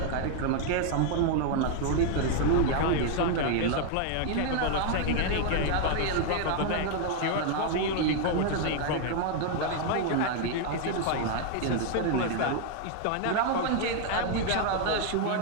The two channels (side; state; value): both; different; correlation 0.00